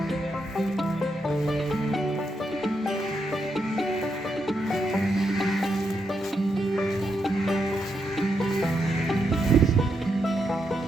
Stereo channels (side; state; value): both; normal; correlation 0.81